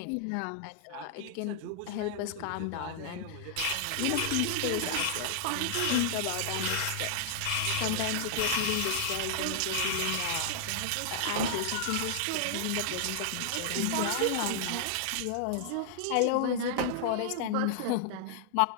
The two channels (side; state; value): both; different; correlation -0.01